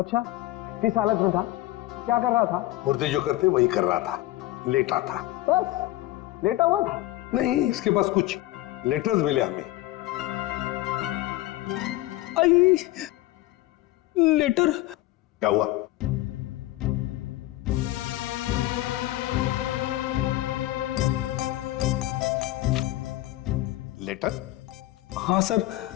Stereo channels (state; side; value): quieter; right; 16.9 dB